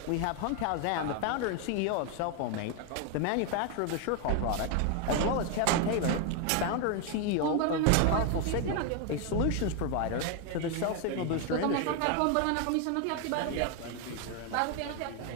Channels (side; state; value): both; different; correlation 0.01